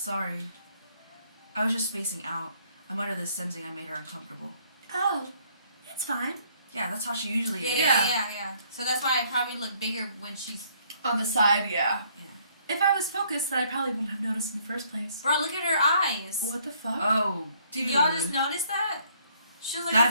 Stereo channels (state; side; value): inverted; both; correlation -0.64